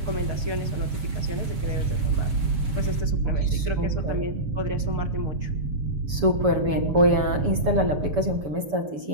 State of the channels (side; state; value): left; late; 7.0 ms